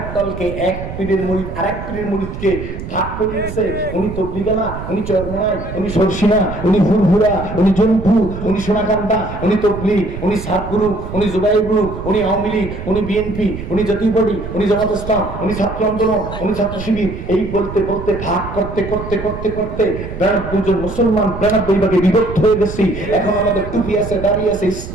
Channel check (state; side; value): noise; right; rumble, 9 dB below the sound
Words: দলকে, এক পীরের মুরিদ আরেক পীরের মুরিদকে ভাগ করে দিয়েছে। উনি তবলিগালা, উনি চরমনাই, উনি সরসিনা, উনি ফুরফুরা, উনি জনপুর, উনি সোনাকান্দা, উনি তবলিগ, উনি সাতগুরু, উনি জুবাইর গ্রুপ, উনি আওয়ামী লীগ, উনি বিএনপি, উনি জাতীয় পার্টি, উনি জামাত ইসলাম, উনি ছাত্র আন্দোলন, উনি ছাত্র শিবির। এই বলতে বলতে ভাগ করতে করতে করতে করতে 92 জন মুসলমান 92 ভাগে বিভক্ত হয়ে গেছি। এখন আমাদের টুপি আছে, দাড়ি আছে,